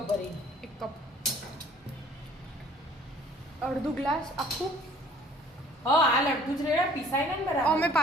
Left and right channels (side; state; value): both; normal; correlation 0.54